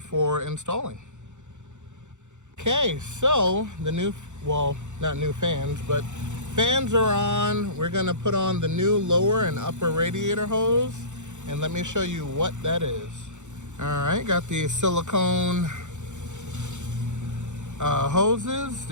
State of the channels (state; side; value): late; left; 0.84 ms